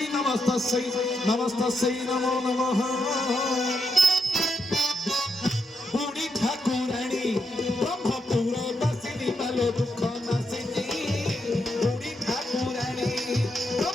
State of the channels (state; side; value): normal; both; correlation 0.81